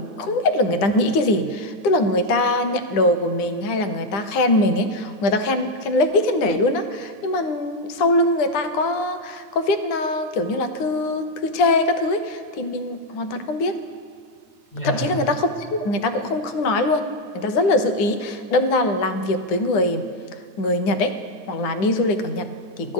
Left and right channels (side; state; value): right; late; 9.9 ms